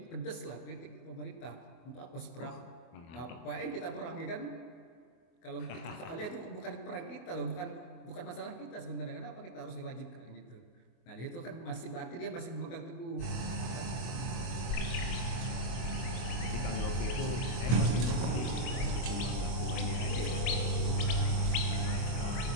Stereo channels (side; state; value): right; late; 24 ms